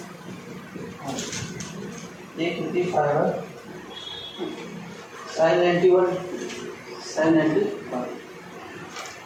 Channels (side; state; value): both; identical; correlation 1.00